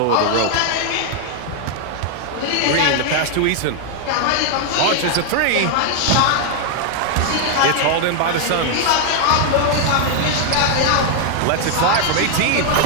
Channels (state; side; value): different; both; correlation 0.00